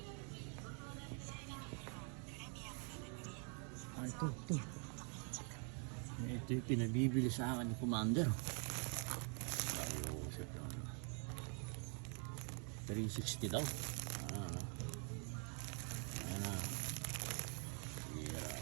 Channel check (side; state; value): left; quieter; 39.5 dB